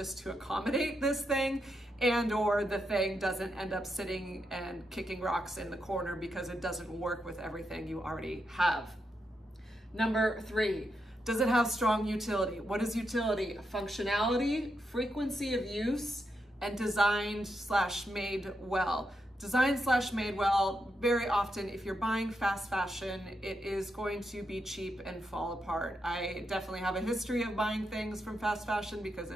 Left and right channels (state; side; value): normal; both; correlation 0.83